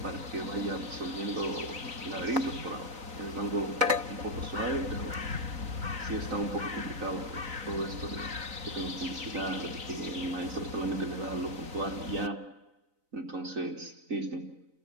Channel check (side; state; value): left; late; 3.9 ms